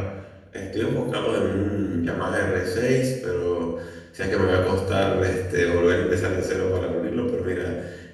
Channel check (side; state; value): both; identical; correlation 1.00